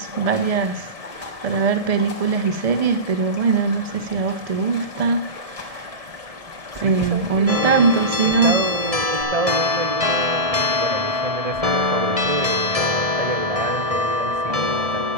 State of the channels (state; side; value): late; left; 1.6 ms